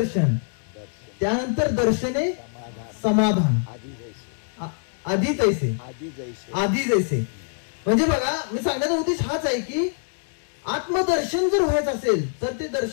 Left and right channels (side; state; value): right; silent; 59 dB below the other